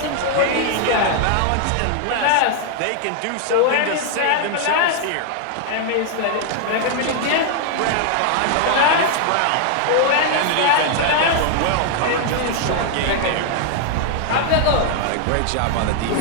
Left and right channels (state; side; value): different; both; correlation 0.00